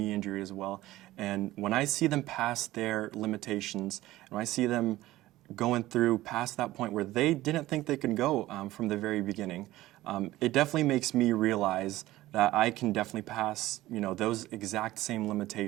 injury as well, and when I see them past their limitations, and when I see them going through past that point where they didn't think they could go from the very beginning, it definitely makes me realize that I can definitely pass, those exact same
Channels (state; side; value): quieter; left; 16.5 dB